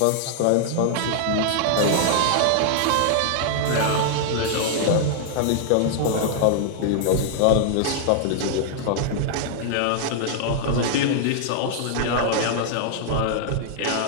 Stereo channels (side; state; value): both; different; correlation -0.01